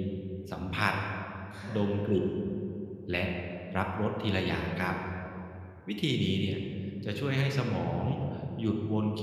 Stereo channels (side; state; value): both; identical; correlation 1.00